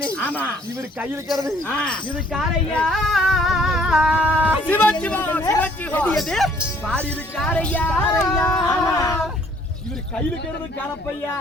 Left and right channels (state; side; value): normal; both; correlation 0.60